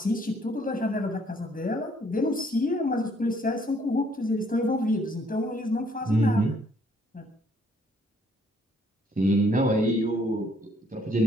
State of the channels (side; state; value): both; normal; correlation 0.65